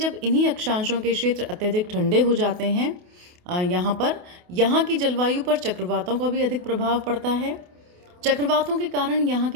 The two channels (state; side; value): late; left; 28 ms